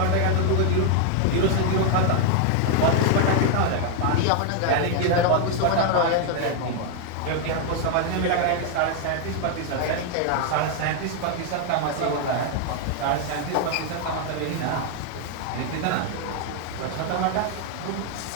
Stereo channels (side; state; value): both; different; correlation 0.00